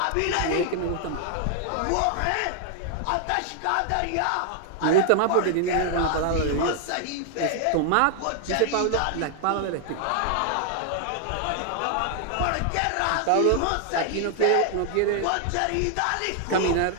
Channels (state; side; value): different; both; correlation 0.00